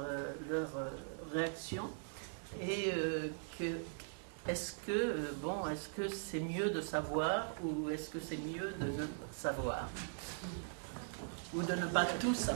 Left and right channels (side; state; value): left; silent; digital silence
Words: réaction et est-ce que c'est mieux de savoir ou est-ce que c'est mieux de ne pas savoir ? Ou de ne pas tout